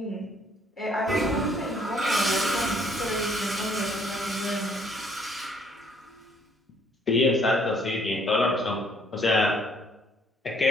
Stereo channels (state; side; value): normal; both; correlation 0.63